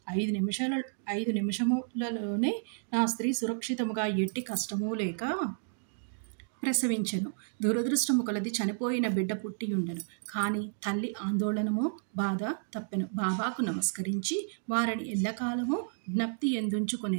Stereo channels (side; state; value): left; silent; digital silence